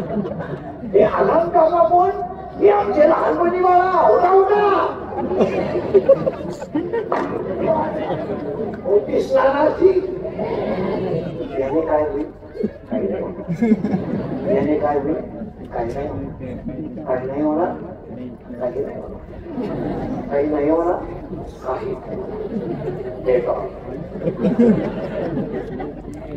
हे अलार्म काका कोण हे आमचे लहानपणी बाळा होता होता. मोठी स्नानाची याने काय होईल काही नाही. याने काय होईल काही नाही. काही नाही होणार काही नाही होणार. काही नाही होणार काही ते का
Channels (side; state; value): both; identical; correlation 1.00